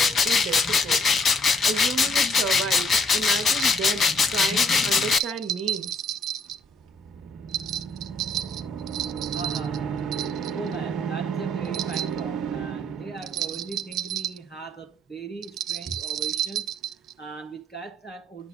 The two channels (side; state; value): both; normal; correlation 0.65